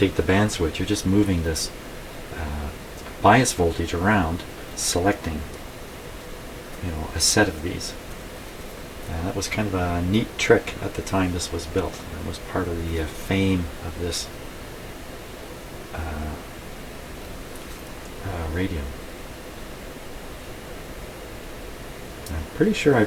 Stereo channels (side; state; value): both; identical; correlation 1.00